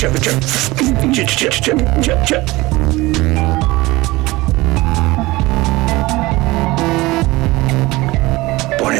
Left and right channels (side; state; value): left; quieter; 20.5 dB